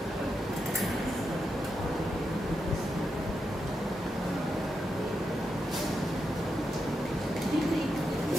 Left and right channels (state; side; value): normal; both; correlation 0.85